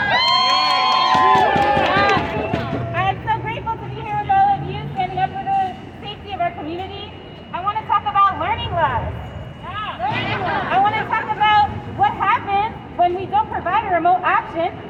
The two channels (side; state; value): both; identical; correlation 1.00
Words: I'm so grateful to be here with all of you standing up for the safety of our community. I want to talk about learning loss. I want to talk about what happens when we don't provide a remote option